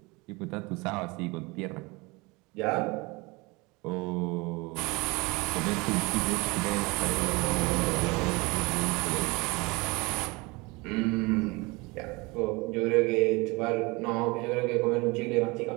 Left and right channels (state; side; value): quieter; left; 25.4 dB